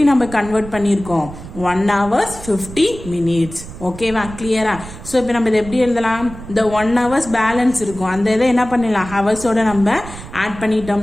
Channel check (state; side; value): noise; right; rumble, 14 dB below the sound